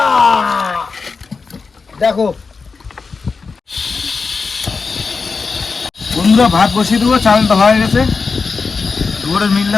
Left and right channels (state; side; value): quieter; right; 4.7 dB